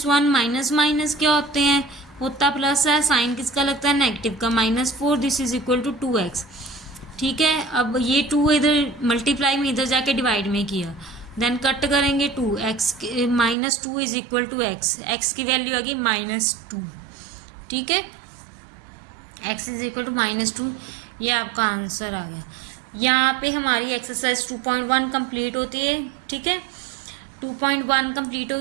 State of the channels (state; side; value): drops out; left; at 13.6 s